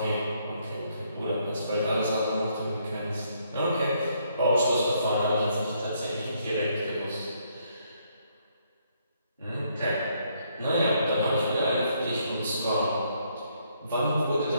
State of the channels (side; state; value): both; inverted; correlation -0.71